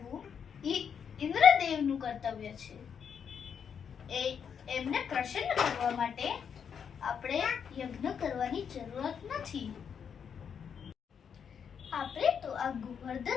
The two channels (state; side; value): quieter; right; 7.3 dB